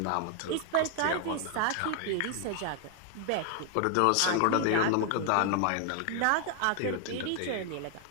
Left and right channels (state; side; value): different; both; correlation 0.00